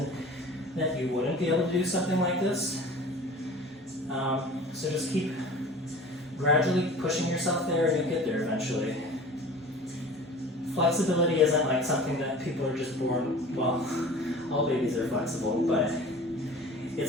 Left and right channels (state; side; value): normal; both; correlation 0.41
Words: that you wouldn't be able to do something like this. So just keep gradually pushing yourself there and you'll get there eventually. Flexibility isn't like something that people are just born, well, all babies are flexible, but